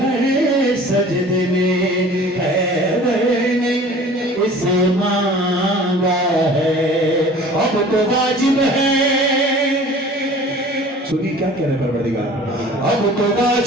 सजदे में हैदर ने इसे मांगा है, अब तो वाजिब है। सुनिए क्या कह रहे परवरदिगार, अब तो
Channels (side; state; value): both; normal; correlation 0.45